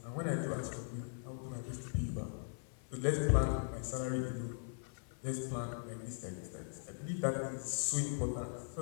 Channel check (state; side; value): silent; right; 51 dB below the other